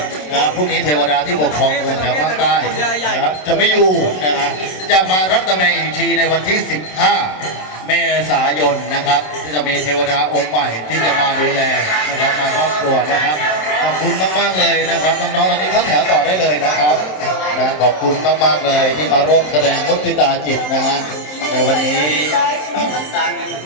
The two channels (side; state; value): right; late; 27 ms